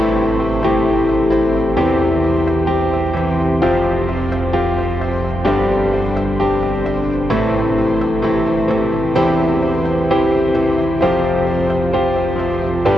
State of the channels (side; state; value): right; noise; hum, 11 dB below the sound